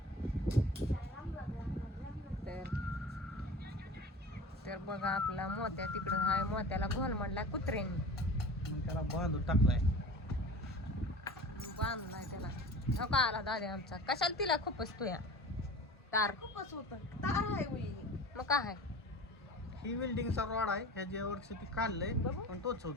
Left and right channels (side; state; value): both; normal; correlation 0.37